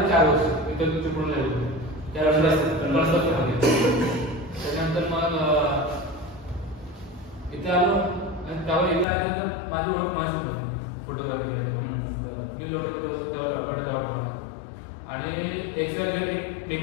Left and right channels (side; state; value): right; drops out; at 9.1 s